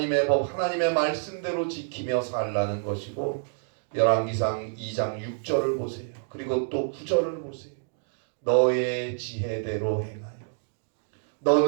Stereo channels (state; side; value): silent; left; digital silence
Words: 법, 하나님의 말씀대로 지키며 살라는 것이고 열왕기상 2장 6절을 보세요. 그리고 또 9절을 보세요. 너의 지혜대로 행하여